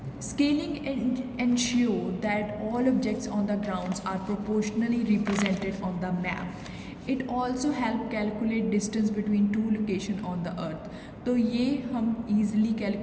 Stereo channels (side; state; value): both; identical; correlation 1.00